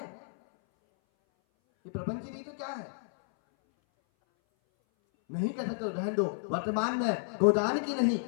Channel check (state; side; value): silent; right; 57 dB below the other